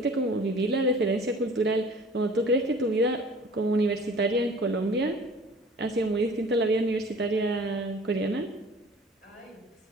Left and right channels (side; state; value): both; normal; correlation 0.47